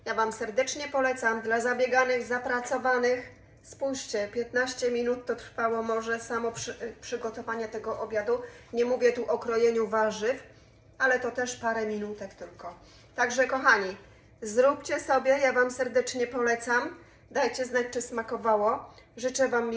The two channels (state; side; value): identical; both; correlation 1.00